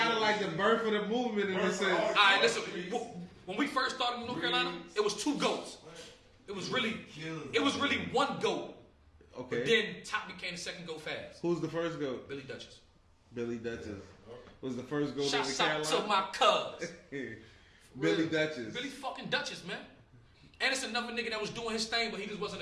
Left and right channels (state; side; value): identical; both; correlation 1.00